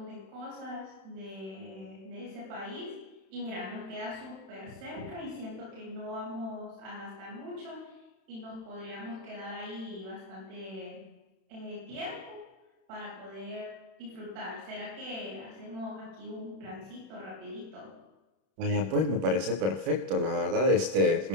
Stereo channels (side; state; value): left; late; 31 ms